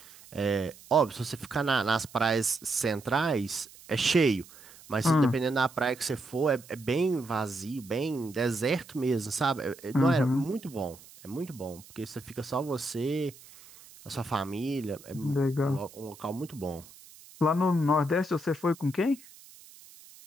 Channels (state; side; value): noise; right; hiss, 21 dB below the sound